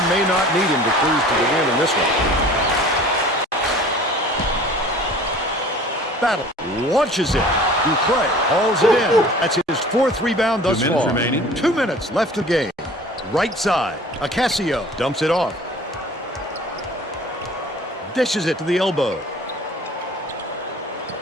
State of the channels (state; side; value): normal; both; correlation 0.46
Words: may not need him to cruise to the win in this one. Battle launches it. Dupree hauls it in. That's his fourth rebound thus far. 2 minutes left of the game. Right side. Ocasio dumps it off. Dishes it to the elbow.